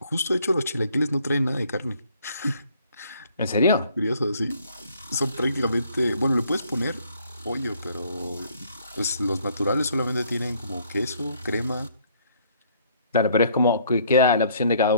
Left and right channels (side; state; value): both; inverted; correlation -0.63